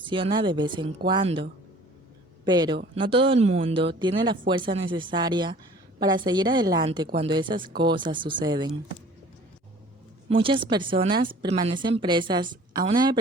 de vez en cuando. Pero no todo el mundo tiene la fuerza necesaria para seguir adelante cuando esas cosas suceden. Muchas personas permanecen presas a una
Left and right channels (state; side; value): normal; both; correlation 0.49